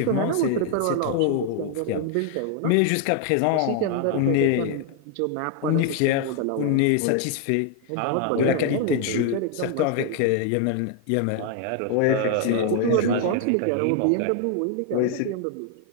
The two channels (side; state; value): both; different; correlation 0.00